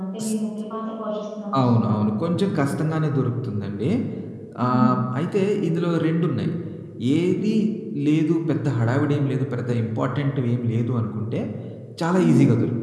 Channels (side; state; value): both; identical; correlation 1.00